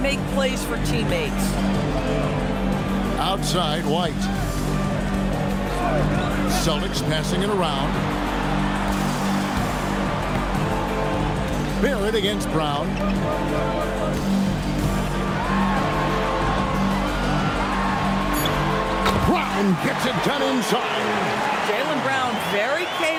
plays for teammates. Outside, White. Celtics passing it around. Barrett against Brown. Brown gets it done inside. Jaylen Brown very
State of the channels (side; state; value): both; identical; correlation 1.00